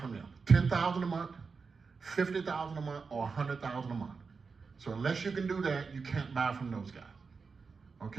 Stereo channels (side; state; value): left; quieter; 5.0 dB